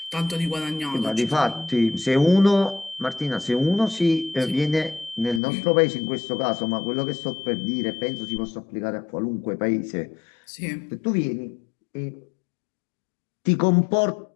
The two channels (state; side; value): drops out; right; at 5.4 s